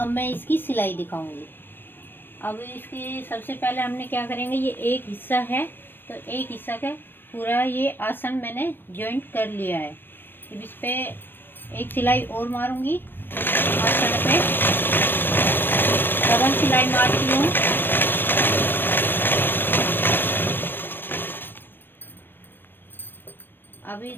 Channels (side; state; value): right; late; 0.096 ms